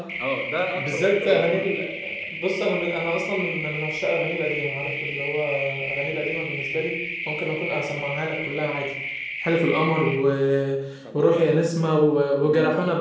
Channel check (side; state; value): both; identical; correlation 1.00